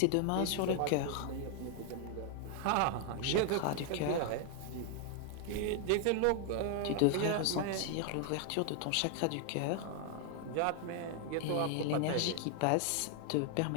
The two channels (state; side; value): different; both; correlation 0.00